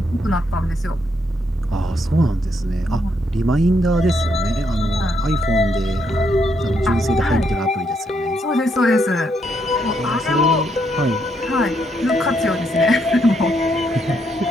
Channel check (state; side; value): normal; both; correlation 0.76